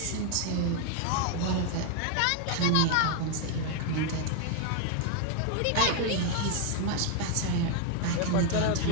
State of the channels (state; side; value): different; both; correlation 0.01